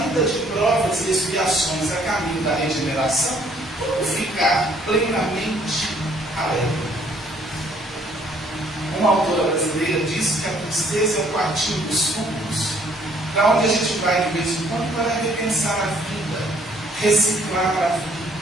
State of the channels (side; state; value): both; normal; correlation 0.63